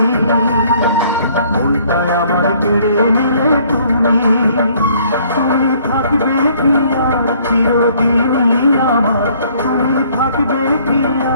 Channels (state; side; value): inverted; both; correlation -0.61